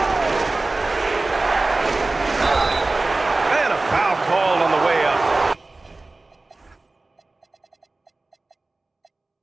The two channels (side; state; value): left; quieter; 3.2 dB